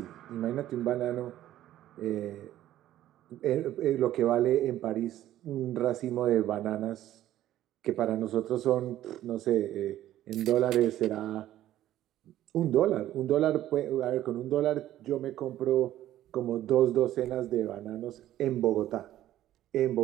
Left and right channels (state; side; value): quieter; left; 13.2 dB